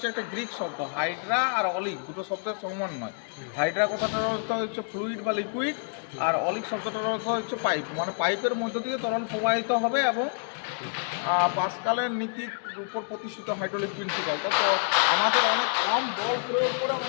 একটা গ্রিক শব্দ, হাইড্রা আর অলিক দুটো শব্দের সমন্বয়। হাইড্রা কথাটার অর্থ হচ্ছে ফ্লুইড বা লিকুইড, আর অলিক শব্দটার অর্থ হচ্ছে পাইপ, মানে পাইপের মধ্য দিয়ে তরল প্রবাহিত হবে। এবং পাস্কালের নীতির উপর প্রতিষ্ঠিত হাইড্রোলিক প্রিন্সিপাল। তো আমাদের অনেক কম বল প্রয়োগ করে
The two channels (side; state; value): right; silent; 59 dB below the other